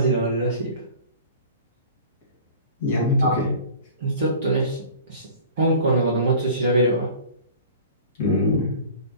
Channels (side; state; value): both; inverted; correlation -0.43